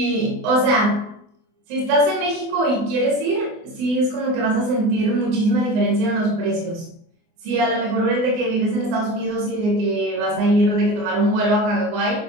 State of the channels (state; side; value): late; left; 24 ms